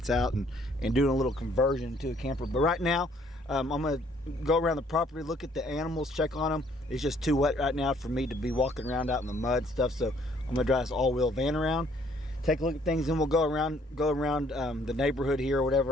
out and doing a little conversion to a camper. But right now, I'm going to go around the property, look at the animals, check on them. It's just too wet right now for me to be walking around out in the mud and stuff, so I'm going to drive this all-wheel van around, take a look at things, and we'll go around the neighborhood here or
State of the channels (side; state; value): both; normal; correlation 0.63